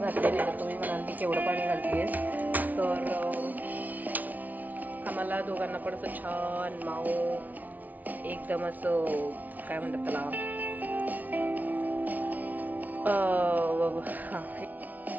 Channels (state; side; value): late; left; 0.076 ms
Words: आहे, तुम्ही म्हणाल की केवढं पाणी घालतेस, तर आम्हाला दोघांना पण असं छान माऊ एकदम असं काय म्हणतात त्याला,